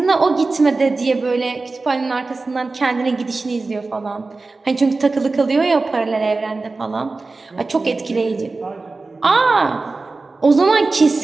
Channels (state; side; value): quieter; left; 3.6 dB